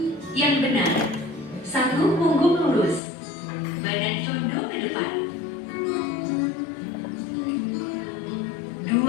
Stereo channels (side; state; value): right; drops out; at 3.0 s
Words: Yang benar. 1. Punggung lurus. Badan condong ke depan. 2.